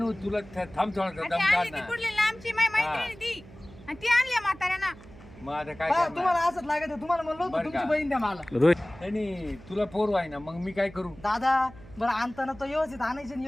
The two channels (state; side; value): noise; right; hum, 20 dB below the sound